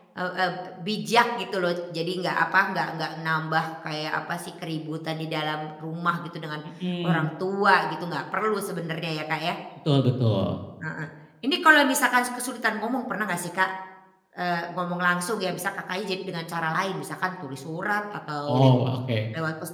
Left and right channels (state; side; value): identical; both; correlation 1.00